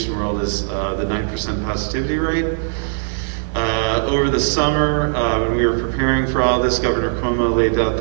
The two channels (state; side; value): silent; left; digital silence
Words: world is the 9% positivity rate. Over the summer, when we were preparing for all this, Governor Cuomo laid out